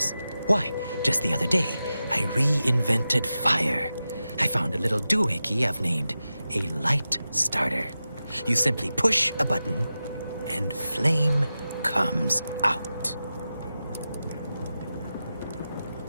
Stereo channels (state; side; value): inverted; both; correlation -0.92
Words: Why, just the other day, I reinvented fire. I found a little doohickey I've named a light starter. You simply push a button, and flame comes out.